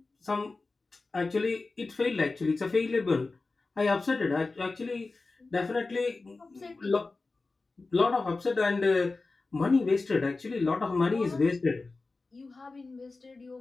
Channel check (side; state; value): right; quieter; 3.7 dB